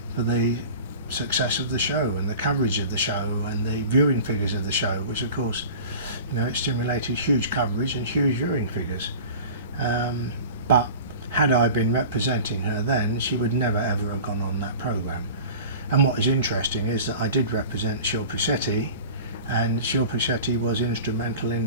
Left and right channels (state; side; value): inverted; both; correlation -0.38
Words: for the success of the show and the coverage of the show and the viewing figures of the show, which of course it stimulated huge coverage and huge viewing figures. But had I been representing her then, she would never ever have gone on that programme. And what is interesting is that I did represent Shilpa Shetty, and Shilpa Shetty was instrumental